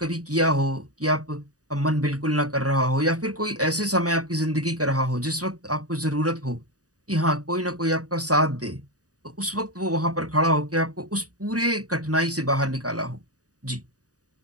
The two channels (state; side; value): late; left; 0.67 ms